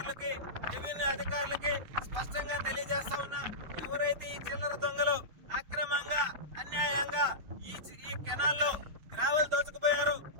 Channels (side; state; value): left; late; 6.5 ms